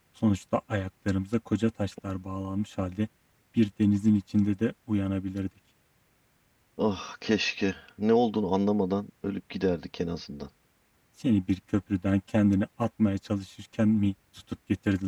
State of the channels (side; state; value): both; identical; correlation 1.00